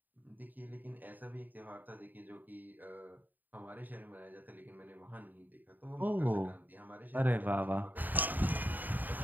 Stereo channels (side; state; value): left; late; 0.087 ms